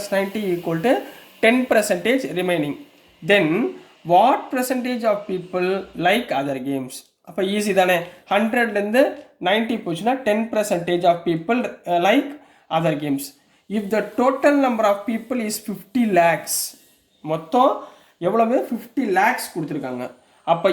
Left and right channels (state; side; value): identical; both; correlation 1.00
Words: equal to 10% remaining. Then what percentage of people like other games? அப்போ ஈஸி தானே. 100லேருந்து 90 போச்சுன்னா 10% of people like other games. If the total number of people is 50 lakhs, மொத்தம் எவ்வளவு? 50 lakhs கொடுத்துருக்காங்க. அப்போ